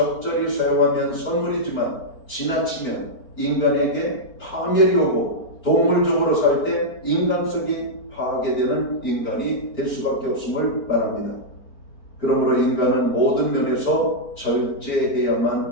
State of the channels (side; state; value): right; late; 4.4 ms